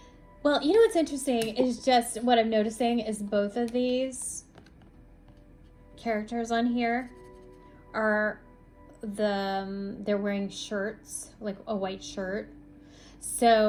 well, you know what's interesting is just what I'm noticing is both of these characters on here are they're wearing shirts, like a white shirt.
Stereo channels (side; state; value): both; identical; correlation 1.00